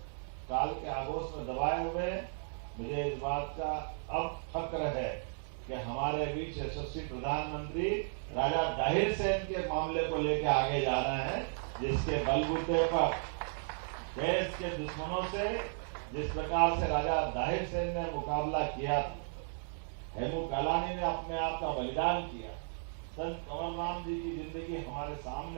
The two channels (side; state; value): left; silent; digital silence